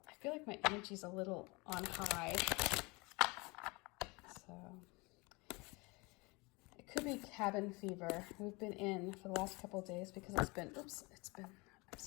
feel like my energy's a little on high. So it could be cabin fever. We've been in for the last couple of days because I'm just gonna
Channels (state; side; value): quieter; right; 26.3 dB